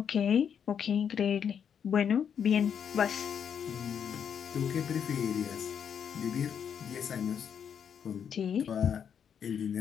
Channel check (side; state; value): right; quieter; 7.8 dB